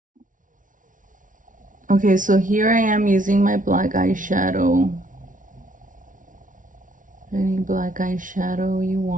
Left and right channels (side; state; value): left; late; 0.38 ms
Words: Okay, so here I am using my black eyeshadow. Any black eyeshadow you